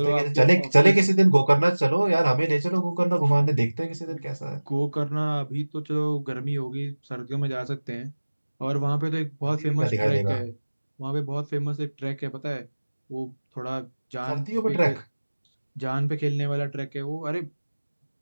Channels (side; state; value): both; inverted; correlation -1.00